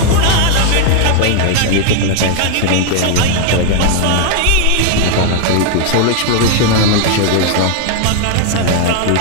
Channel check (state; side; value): different; both; correlation 0.00